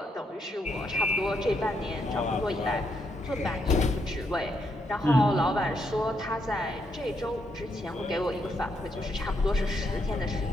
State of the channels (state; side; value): normal; both; correlation 0.78